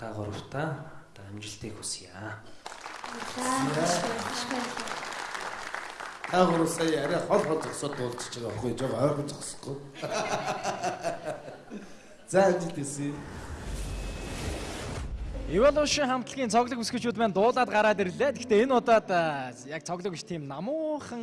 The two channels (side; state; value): both; identical; correlation 1.00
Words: гуравтаа амжилтыг хүсье. Таагур сая арай хол зогсоод дуулчих байгаа байхгүй жоо ойрхон зогсохгүй. За амжилт хүсье. Evolution хамтлагийн цоглог өсгөгчүүд маань дуулаад гараад ирлээ. Гэхдээ энэ удаад яг цоглог биш тийм